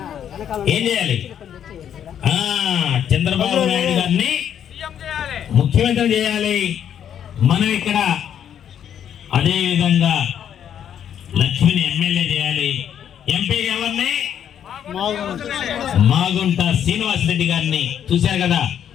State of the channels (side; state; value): right; quieter; 9.3 dB